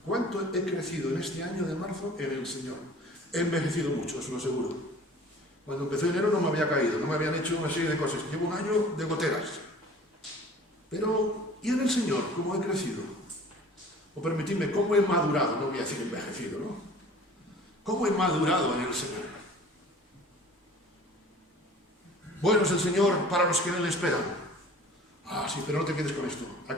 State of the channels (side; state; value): both; normal; correlation 0.46